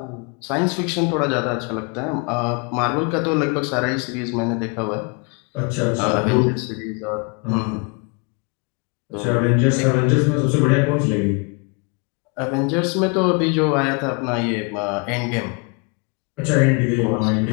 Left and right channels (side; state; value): right; quieter; 32.6 dB